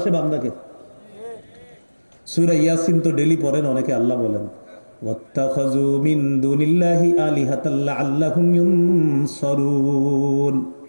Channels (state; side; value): inverted; both; correlation -1.00